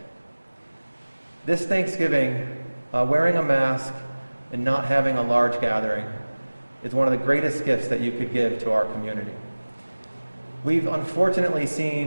This Thanksgiving, wearing a mask and not having a large gathering is one of the greatest gifts that you could give to our community. We've unfortunately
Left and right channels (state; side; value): inverted; both; correlation -1.00